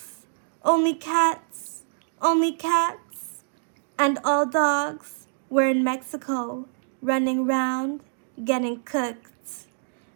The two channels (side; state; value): left; silent; digital silence